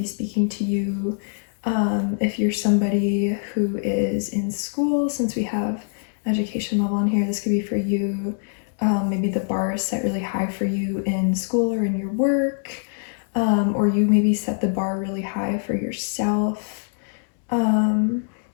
speaking to you. If you're somebody who is in school, since we have education level on here, this could be for you. Maybe the bar is set really high for you in school or in your work, or you maybe set the bar really high for yourself.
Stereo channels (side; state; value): right; silent; digital silence